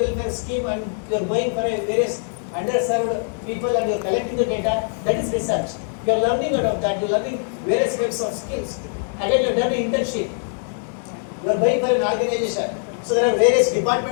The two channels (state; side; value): silent; right; digital silence